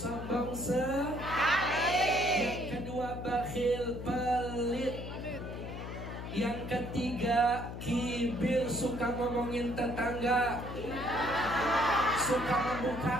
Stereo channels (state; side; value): noise; left; hum, 8 dB below the sound